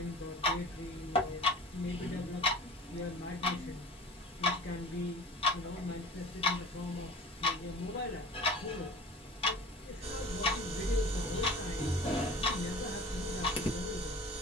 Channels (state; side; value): normal; both; correlation 0.40